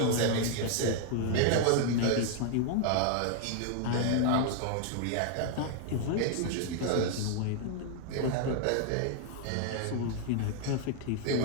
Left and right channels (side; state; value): both; different; correlation 0.00